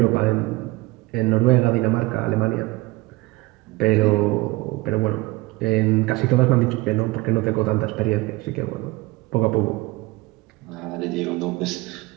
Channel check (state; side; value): quieter; left; 21.6 dB